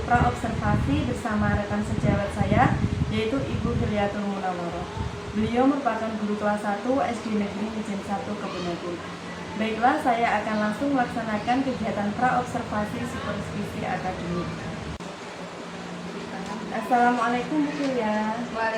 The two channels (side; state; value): both; identical; correlation 1.00